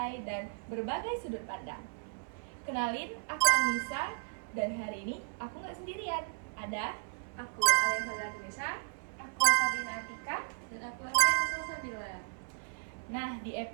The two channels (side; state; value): left; silent; 55 dB below the other